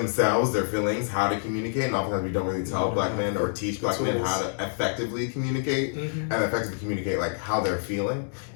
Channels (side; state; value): right; silent; digital silence